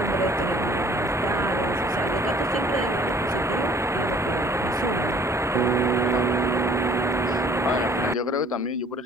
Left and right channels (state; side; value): normal; both; correlation 0.55